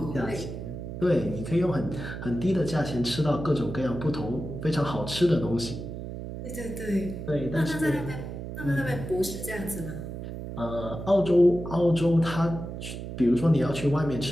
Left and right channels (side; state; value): right; noise; hum, 8 dB below the sound